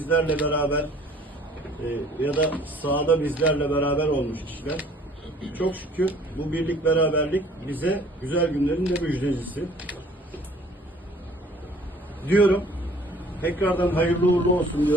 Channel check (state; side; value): normal; both; correlation 0.54